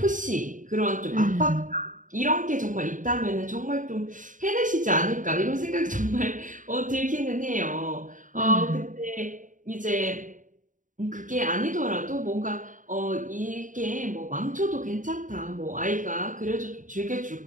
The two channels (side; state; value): left; late; 0.38 ms